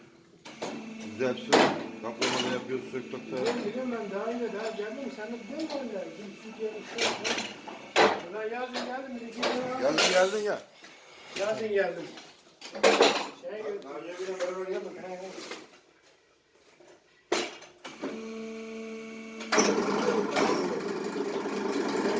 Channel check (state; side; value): identical; both; correlation 1.00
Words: Güzel sök. Kaplamalı yapıyoruz, sök bakta. Biliyorum ben daha iyi daha geldim. Sen de biliyor musun ben? Ben yazın geldim. Geldin ya. Yazın geldim. Naciye bile beraber geldik.